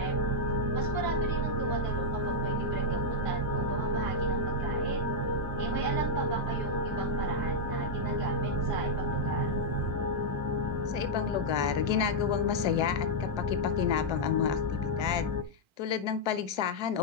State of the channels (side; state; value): left; late; 1.3 ms